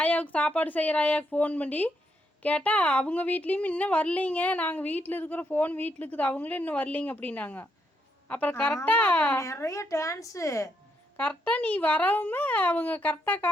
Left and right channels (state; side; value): normal; both; correlation 0.78